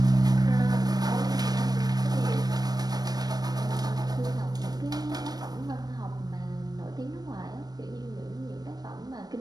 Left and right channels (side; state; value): left; late; 0.19 ms